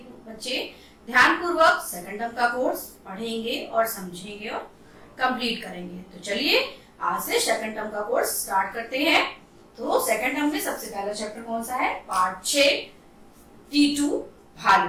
बच्चे ध्यानपूर्वक सेकंड टर्म का कोर्स पढ़ेंगे और समझेंगे और कंप्लीट करेंगे। तो चलिए आज से सेकंड टर्म का कोर्स स्टार्ट करते हैं। तो सेकंड टर्म में सबसे पहला चैप्टर कौन सा है? पार्ट 6 टीटू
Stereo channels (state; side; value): identical; both; correlation 1.00